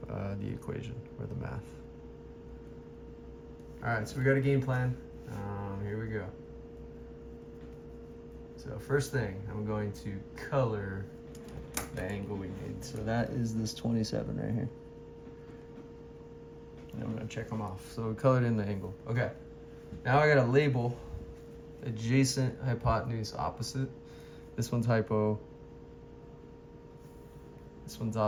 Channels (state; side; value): identical; both; correlation 1.00